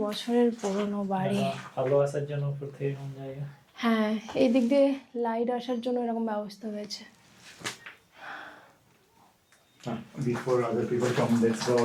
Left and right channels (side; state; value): both; identical; correlation 1.00